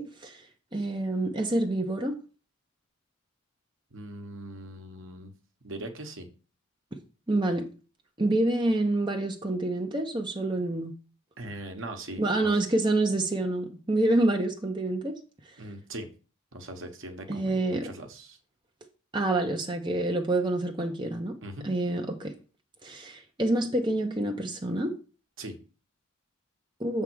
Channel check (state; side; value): normal; both; correlation 0.75